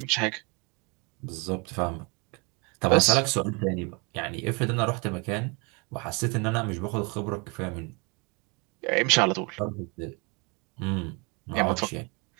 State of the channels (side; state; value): left; quieter; 30.7 dB